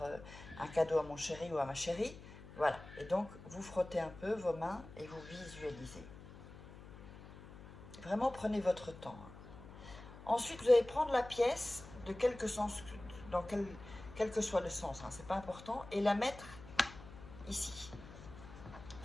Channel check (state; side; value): noise; left; hum, 16 dB below the sound